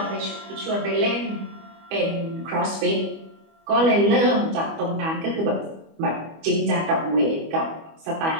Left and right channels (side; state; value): left; late; 25 ms